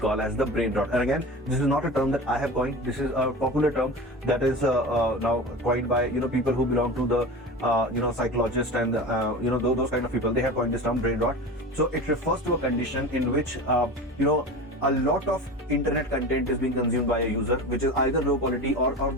as the brain rot. And again, this is not a term that I have coined. This is a popular term that is now coined by people who belong to the psychologists and those kind of people. They have coined this term, brain rot. So it refers to a condition in which a lot of internet content is being consumed by a user, which is either low quality or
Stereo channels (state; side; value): normal; both; correlation 0.31